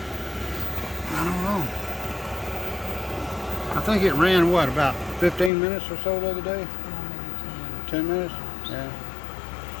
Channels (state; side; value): drops out; right; at 5.5 s